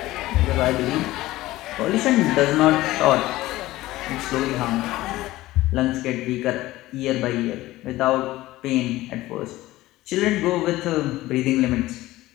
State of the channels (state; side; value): quieter; right; 17.2 dB